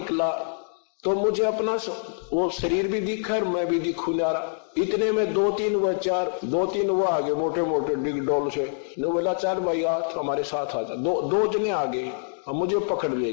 तो मुझे अपना वो शरीर भी दिखा और मैं भी दिखू जा रहा। इतने में 2-3 वो आगे मोटे मोटे डिग डोल से, ने बोला 4 भाई आज हमारे साथ आ जा। 2 जने आगे और मुझे पकड़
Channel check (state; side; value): silent; right; digital silence